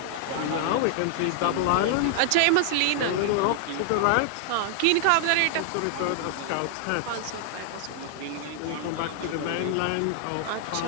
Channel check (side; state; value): both; different; correlation 0.00